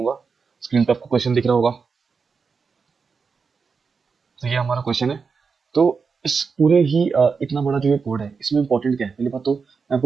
स्क्रीन पे आपको क्वेश्चन दिख रहा होगा। तो ये हमारा क्वेश्चन है। तो इस पूरे ही इतना बड़ा जो ये कोड है, इसमें इंपॉर्टेंट क्या है, पहली बात तो मैं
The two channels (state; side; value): quieter; left; 5.3 dB